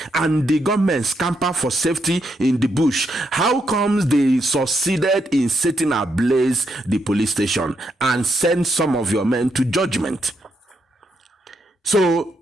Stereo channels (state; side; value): normal; both; correlation 0.79